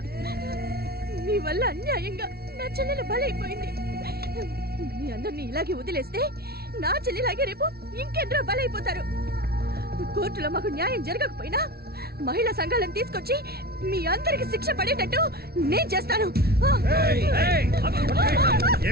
మీ వల్ల అన్యాయంగా నా చెల్లెలు బలైపోయింది. మీ అందరినీ ఇలాగే వదిలేస్తే నా చెల్లిలాగే రేపు ఇంకెందరో బలైపోతారు. కోర్టులో మాకు న్యాయం జరగకపోయినా మహిళా సంఘాలను తీసుకొచ్చి మీ అందరికి శిక్ష పడేటట్టు నేను చేస్తాను.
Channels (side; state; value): left; late; 0.45 ms